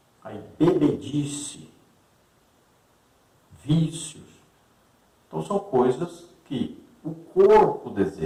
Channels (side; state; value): both; identical; correlation 1.00